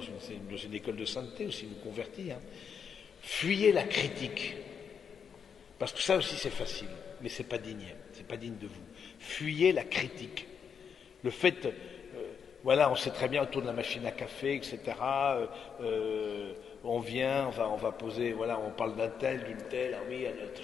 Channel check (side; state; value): right; quieter; 7.0 dB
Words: une école de sainteté aussi, nous convertit. Fuyez la critique, parce que ça aussi c'est facile, mais c'est pas digne de vous. Fuyez la critique. Le fait, on sait très bien autour de la machine à café, etc. On vient, on va poser, on parle d'un tel, d'une telle, oui, à notre